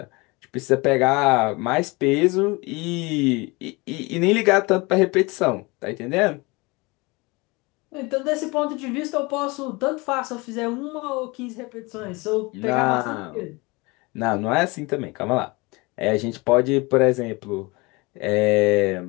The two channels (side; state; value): right; quieter; 25.4 dB